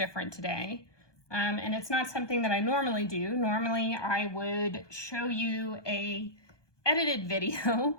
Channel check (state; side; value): late; right; 1.2 ms